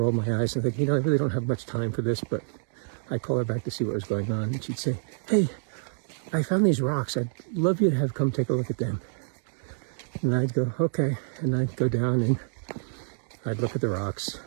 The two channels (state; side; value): silent; left; digital silence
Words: my eyes and think, I really don't have much time for this, but I'd call her back to see what was going on. And she'd say, hey, I found these rocks. I'd love you to have come take a look at them. And I'd go, okay. And I'd go down and I'd look at the rocks,